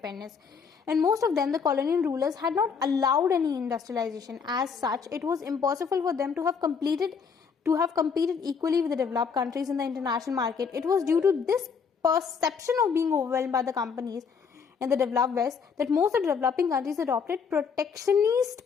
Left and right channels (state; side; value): quieter; right; 6.0 dB